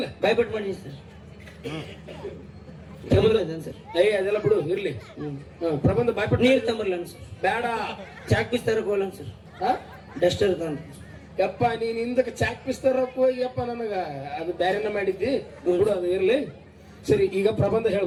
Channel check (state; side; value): identical; both; correlation 1.00